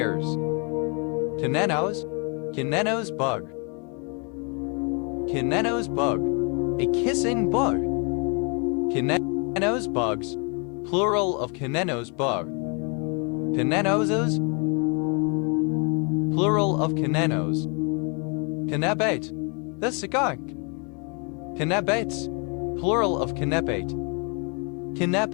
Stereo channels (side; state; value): right; quieter; 35.4 dB